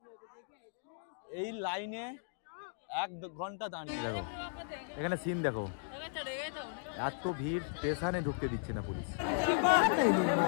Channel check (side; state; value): right; silent; digital silence